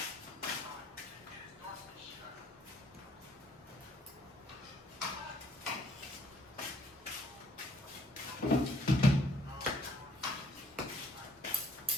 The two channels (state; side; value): normal; both; correlation 0.64